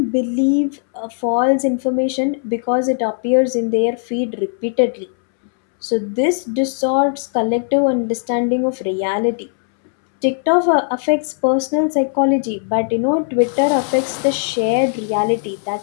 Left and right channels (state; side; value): silent; right; 67 dB below the other